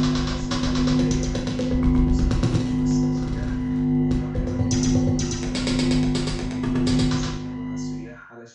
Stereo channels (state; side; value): identical; both; correlation 1.00